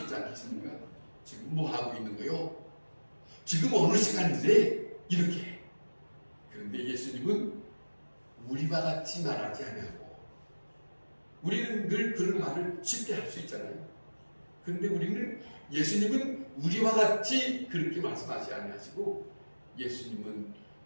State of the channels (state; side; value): inverted; both; correlation -1.00